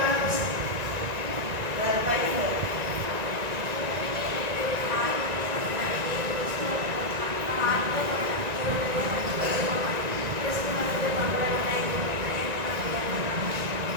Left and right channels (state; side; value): late; left; 1.9 ms